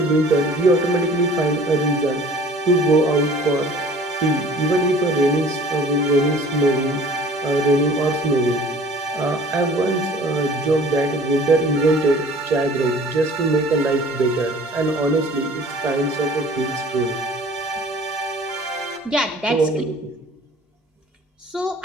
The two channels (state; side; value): normal; both; correlation 0.48